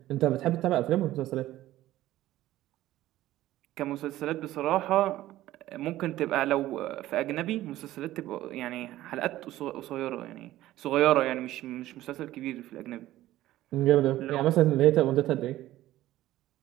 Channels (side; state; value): left; quieter; 15.1 dB